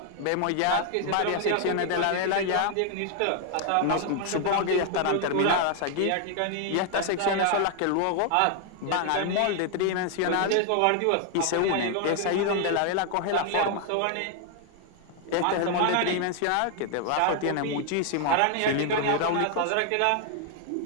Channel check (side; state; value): both; different; correlation 0.00